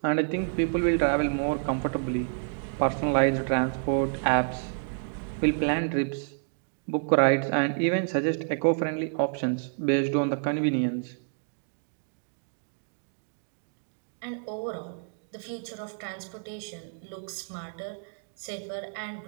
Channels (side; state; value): left; silent; digital silence